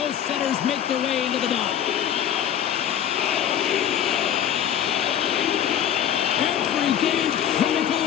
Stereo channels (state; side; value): quieter; right; 9.9 dB